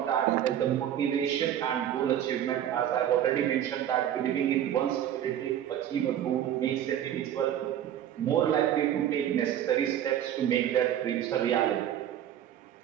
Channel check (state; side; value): quieter; left; 10.7 dB